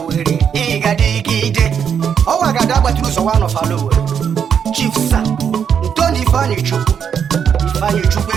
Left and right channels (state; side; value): quieter; left; 7.7 dB